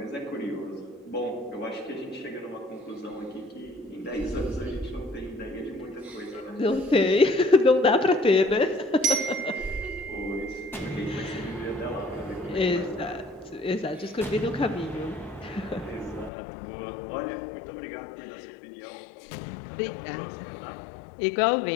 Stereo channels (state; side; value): drops out; right; at 16.3 s